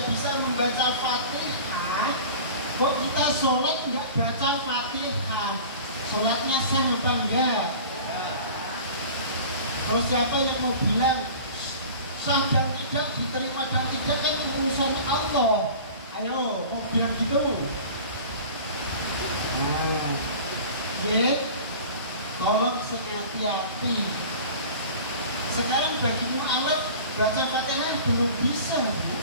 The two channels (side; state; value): both; inverted; correlation -0.40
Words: bisa membaca Fatihah, kok kita sholat nggak baca Fatihah, sholatnya sah apa enggak? Terus siapa yang mau bilang sah dan tidak, diterima dan tidak, kan urusan Allah. Ayo, mau bilang gitu? Nah, ya, tolong hati-hati. Sekarang bagi mu'alaf baca Fatihah belum bisa,